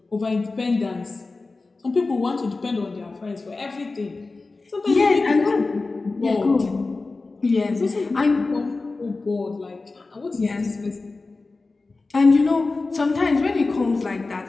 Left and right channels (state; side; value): quieter; right; 3.6 dB